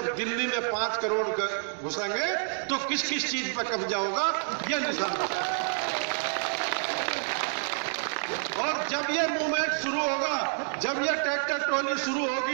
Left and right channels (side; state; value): left; silent; 59 dB below the other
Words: दिल्ली में 5 करोड़ घुसेंगे तो किस किस चीज पर कब्जा होगा यह निशान। और जब ये मूवमेंट शुरू होगा, जब ये ट्रैक्टर ट्रॉली शुरू